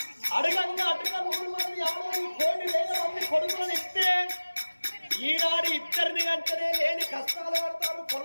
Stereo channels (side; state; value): both; inverted; correlation -1.00